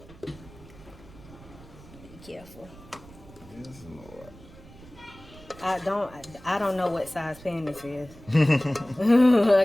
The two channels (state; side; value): noise; right; rumble, 20 dB below the sound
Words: Be careful. Yes, Lord. I don't know what size pan this is.